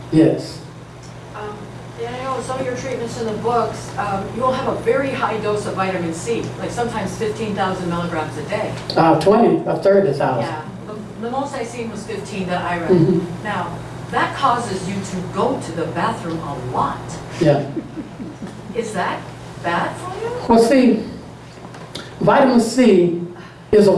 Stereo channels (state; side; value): identical; both; correlation 1.00